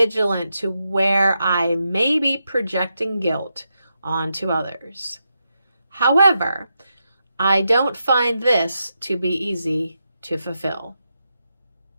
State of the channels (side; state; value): both; inverted; correlation -0.86